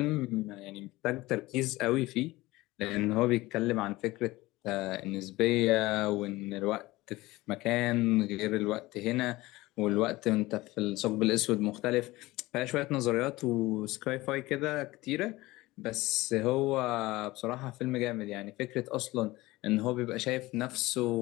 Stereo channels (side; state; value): right; quieter; 19.5 dB